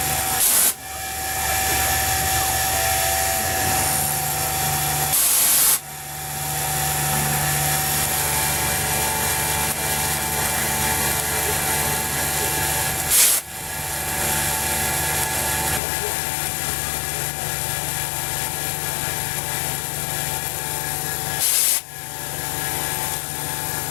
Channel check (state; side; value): drops out; right; at 15.8 s